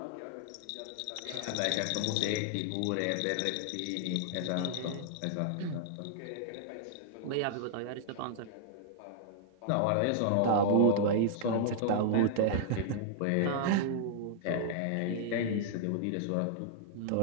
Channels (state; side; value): different; both; correlation -0.01